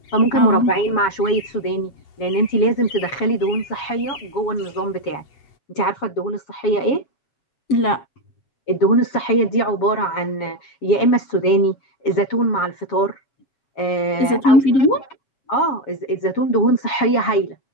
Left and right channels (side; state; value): right; late; 7.2 ms